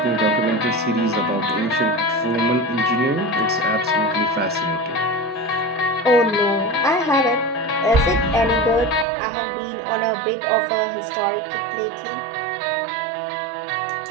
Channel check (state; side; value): drops out; left; at 9.1 s